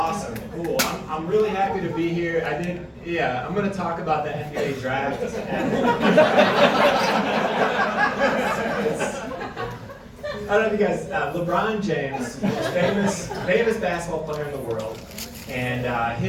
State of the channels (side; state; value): both; identical; correlation 1.00